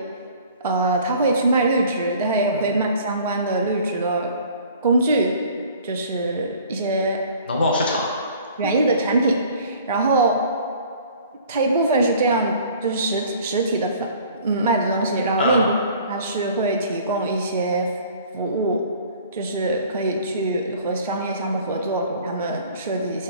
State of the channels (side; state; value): both; inverted; correlation -0.51